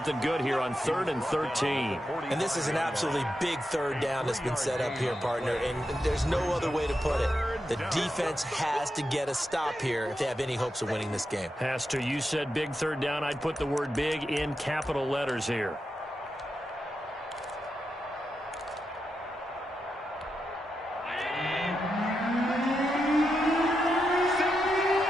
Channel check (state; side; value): normal; both; correlation 0.87